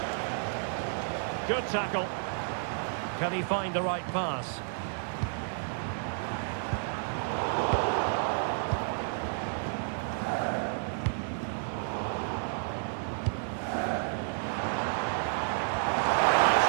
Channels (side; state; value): left; silent; digital silence